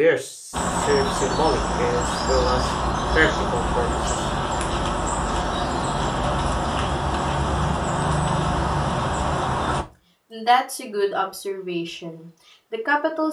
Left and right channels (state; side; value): identical; both; correlation 1.00